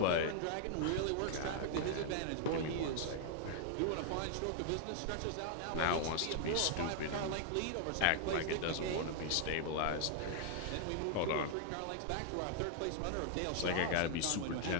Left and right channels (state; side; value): different; both; correlation 0.00